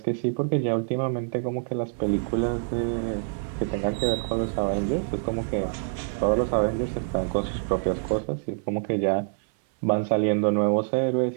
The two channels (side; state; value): left; silent; 61 dB below the other